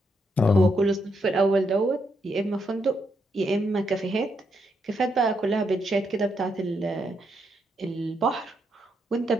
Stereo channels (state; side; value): normal; both; correlation 0.79